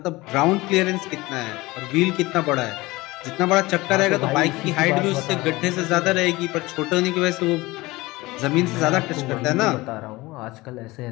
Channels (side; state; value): right; quieter; 20.8 dB